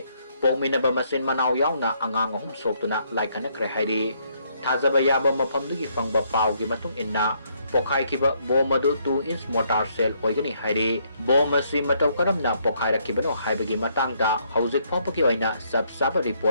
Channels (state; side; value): inverted; both; correlation -0.71